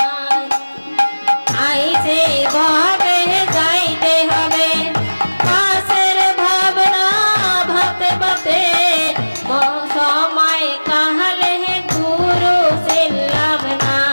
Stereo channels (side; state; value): both; inverted; correlation -1.00